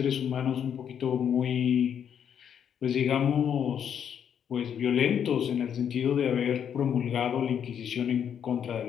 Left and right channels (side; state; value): right; quieter; 8.5 dB